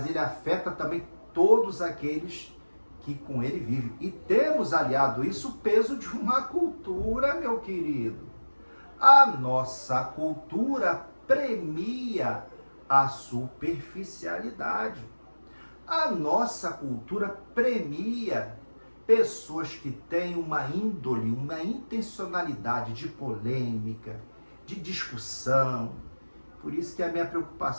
ele afeta também todos aqueles que com ele vivem. E temos aliado isso o peso de uma cultura, meu querido. A nossa cultura premia a superficialidade. A nossa cultura premia pessoas que têm uma índole, uma intencionalidade de polêmica, de discussão. Por isso que a minha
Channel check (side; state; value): both; inverted; correlation -1.00